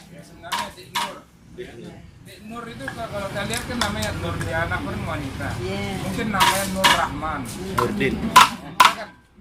Ya, sebenarnya Dik Nur. Dik Nur itu kalau kita lihat kan namanya Nur, dia anak wanita. Mungkin namanya Nur Rahman. Nurdin.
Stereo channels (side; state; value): both; identical; correlation 1.00